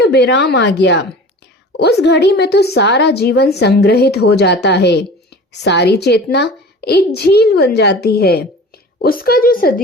विराम आ गया। उस घड़ी में तो सारा जीवन संग्रहित हो जाता है, सारी चेतना एक झील बन जाती है। उसका जो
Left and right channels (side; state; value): both; normal; correlation 0.39